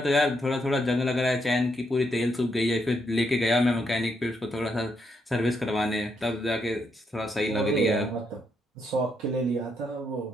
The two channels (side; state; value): both; normal; correlation 0.78